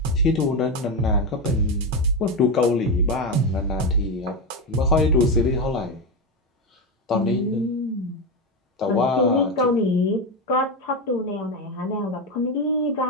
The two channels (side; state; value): both; normal; correlation 0.13